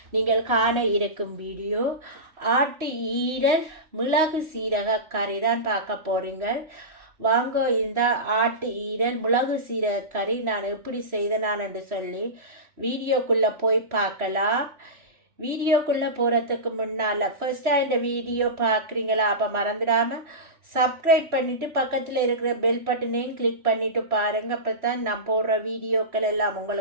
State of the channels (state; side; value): late; left; 3.1 ms